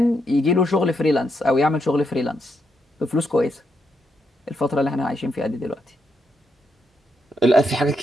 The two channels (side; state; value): both; normal; correlation 0.80